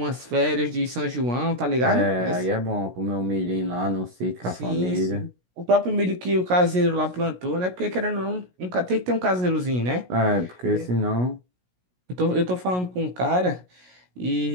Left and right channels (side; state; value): left; late; 16 ms